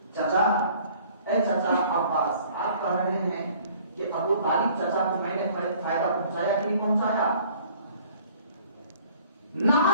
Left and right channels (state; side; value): inverted; both; correlation -0.54